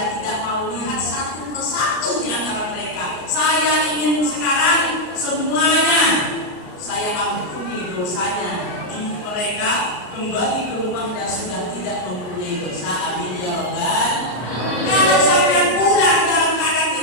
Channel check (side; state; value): right; late; 33 ms